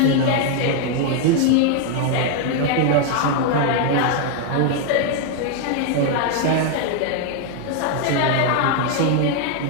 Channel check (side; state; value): both; different; correlation 0.00